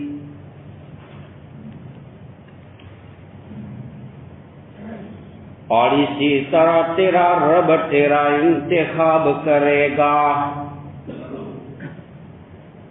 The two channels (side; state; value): both; identical; correlation 1.00